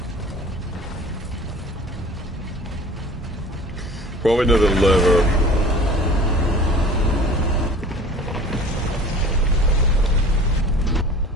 Probably another lever.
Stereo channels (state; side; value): normal; both; correlation 0.43